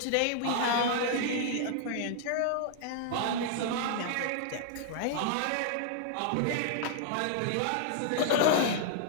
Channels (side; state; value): both; different; correlation -0.01